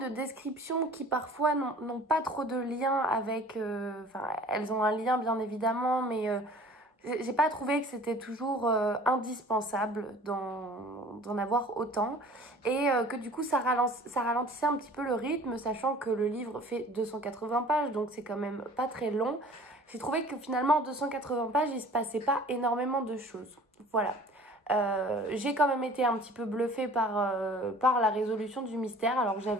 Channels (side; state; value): both; normal; correlation 0.47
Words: descriptions qui parfois n'ont pas trop de lien avec... Enfin, elles ont un lien bien évidemment, mais j'ai pas trouvé que c'était toujours indispensable d'en avoir autant. Et que du coup, ça ralentissait un petit peu le rythme, sachant que le livre fait 280 pages, donc c'est quand même pas très long. J'ai trouvé que finalement, en 280 pages, il se passait pas énormément de choses. Voilà. J'ai quand même été un petit peu bluffée par la résolution du mystère. Alors